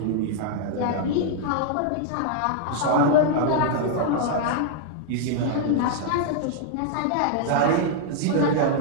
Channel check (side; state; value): both; different; correlation -0.01